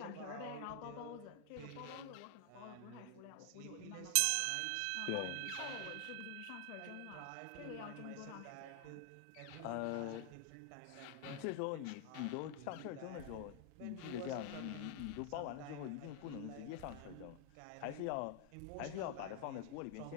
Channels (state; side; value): different; both; correlation 0.00